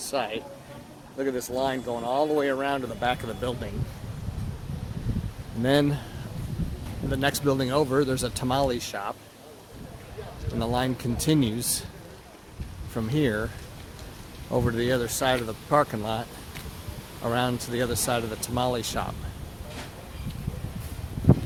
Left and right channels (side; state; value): both; identical; correlation 1.00